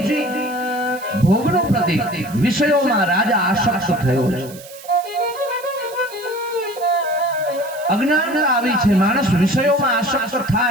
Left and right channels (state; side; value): noise; right; hiss, 18 dB below the sound